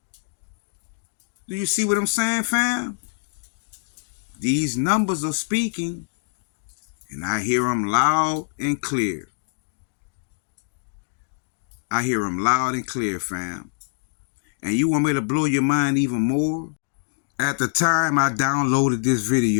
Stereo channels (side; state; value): right; silent; digital silence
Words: Do you see what I'm saying, fam? These numbers are speaking, and I hear them loud and clear. I hear them loud and clear, fam. And you want me to blow your mind even more? At the time I downloaded this